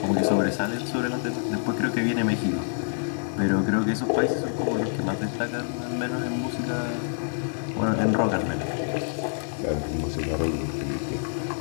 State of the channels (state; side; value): silent; right; digital silence